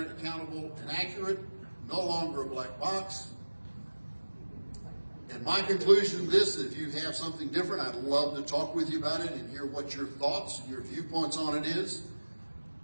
accountable, and accurate, no longer a black box. And my conclusion to this, if you have something different, I'd love to talk with you about it and hear what your thoughts and your viewpoints on it is.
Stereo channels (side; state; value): both; inverted; correlation -1.00